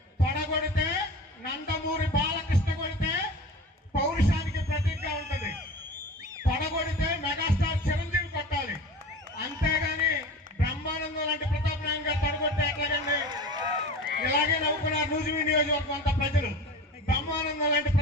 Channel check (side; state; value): both; normal; correlation 0.35